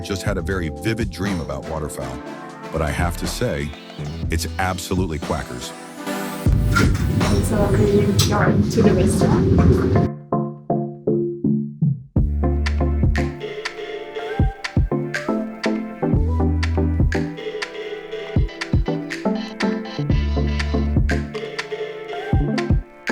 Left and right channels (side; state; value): both; identical; correlation 1.00